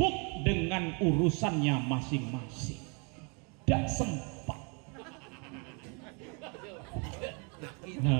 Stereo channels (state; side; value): quieter; left; 34.4 dB